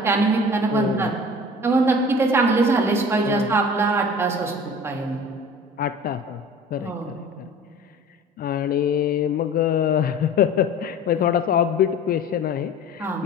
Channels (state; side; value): normal; both; correlation 0.42